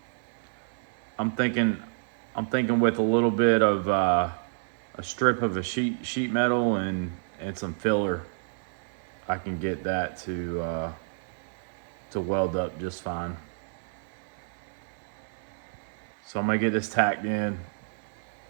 I'm thinking with a little bit of a strip of the sheet metal and some filler, I can get that to weld up just fine. So I'm gonna get this tacked in.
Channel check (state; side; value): silent; left; digital silence